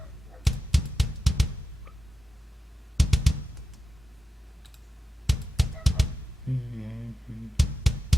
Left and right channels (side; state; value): both; normal; correlation 0.91